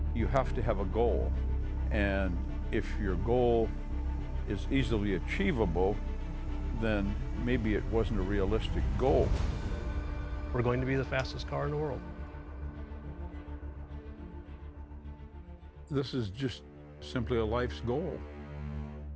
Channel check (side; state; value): both; identical; correlation 1.00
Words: You have to have a goal, and if your goal is easily achievable, then maybe it wasn't a realistic goal. we're going to be the fastest car in the world. This is just simply a life's goal.